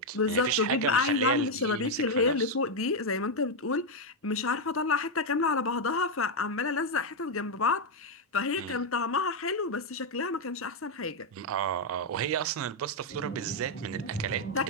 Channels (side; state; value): both; normal; correlation 0.02